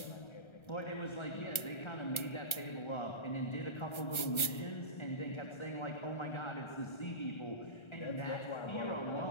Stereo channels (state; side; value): late; right; 1.3 ms